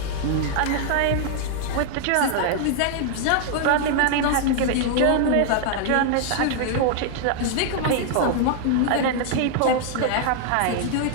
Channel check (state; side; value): different; both; correlation 0.00